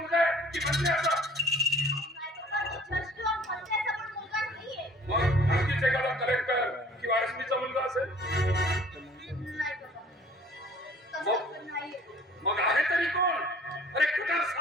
आहे की मंत्र्याचा? नाही बाबा, तो जज किंवा मंत्र्याचा पण मुलगा नाहीये. मग आणखीच एखादा कलेक्टर किंवा एसपीचा मुलगा असेल? नाही बाबा, तसं पण नाहीये. मग आहे तरी कोण? अरे कटार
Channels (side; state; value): both; normal; correlation 0.52